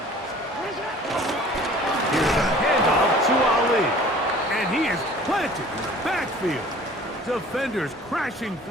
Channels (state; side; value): normal; both; correlation 0.48